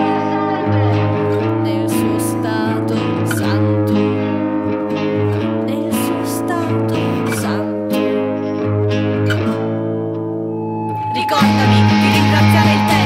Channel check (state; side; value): identical; both; correlation 1.00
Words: nel suo stato santo, nel suo stato santo. Ricordami di ringraziare il